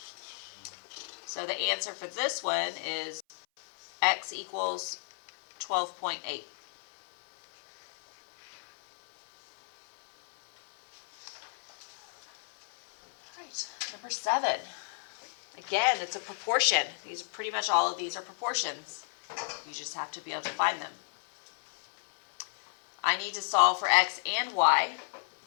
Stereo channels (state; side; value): silent; right; 56 dB below the other